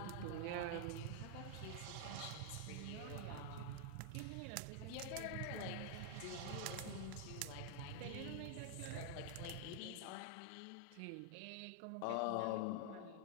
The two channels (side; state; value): both; different; correlation 0.00